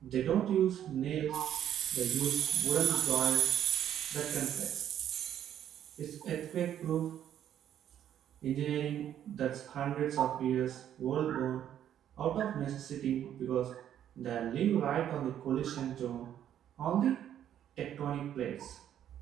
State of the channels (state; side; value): quieter; left; 10.4 dB